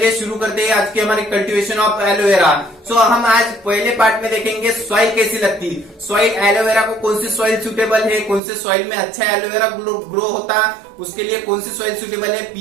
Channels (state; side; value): drops out; left; at 8.4 s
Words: शुरू करते हैं आज के हमारे कल्टीवेशन ऑफ एलोवेरा। सो हम आज पहले पार्ट में देखेंगे सॉइल कैसी लगती, सॉइल एलोवेरा को कौन सी सॉइल सुटेबल है, कौन से सॉइल में अच्छा एलोवेरा ग्रो होता, उसके लिए कौन सी सॉइल सुटेबल है,